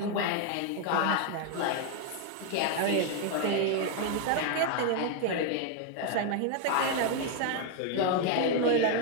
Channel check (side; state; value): both; different; correlation 0.00